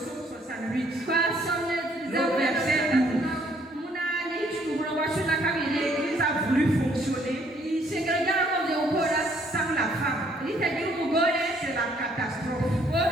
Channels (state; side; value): normal; both; correlation 0.64